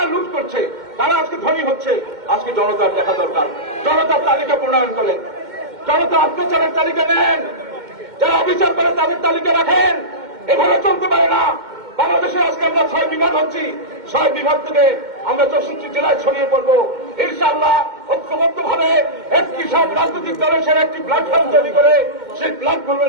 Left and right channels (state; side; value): late; left; 2.1 ms